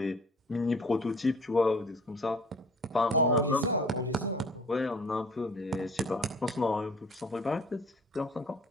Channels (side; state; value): both; normal; correlation 0.50